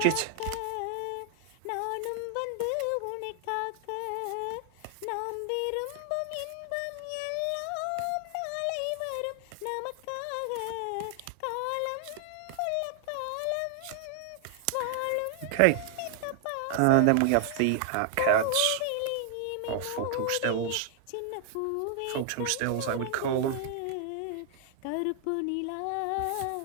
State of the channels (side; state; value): both; different; correlation 0.00